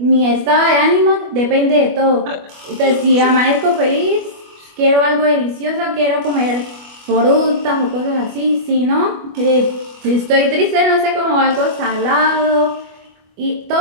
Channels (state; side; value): late; left; 25 ms